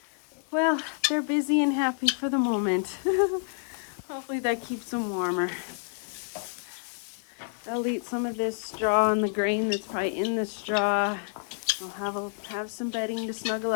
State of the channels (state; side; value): silent; right; 59 dB below the other